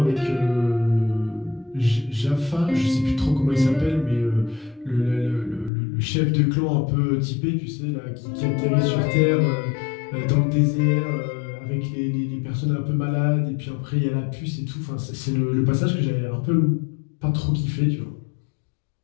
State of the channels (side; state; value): right; drops out; at 5.7 s